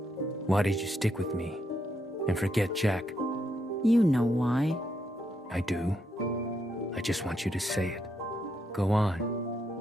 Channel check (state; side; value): normal; both; correlation 0.79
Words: why did you stick with me and forget Jack? You know why. I do. I just want you to say it. Go on.